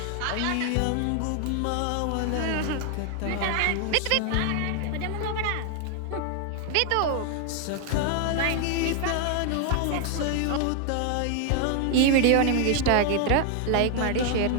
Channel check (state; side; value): different; both; correlation 0.00